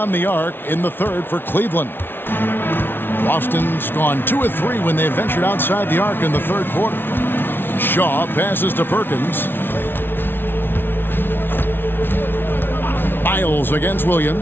the arc in the third for Cleveland. Boston's gone 2 of 3 when they ventured outside the arc in the third quarter. Shaw passes to Perkins. Miles against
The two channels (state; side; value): late; right; 0.10 ms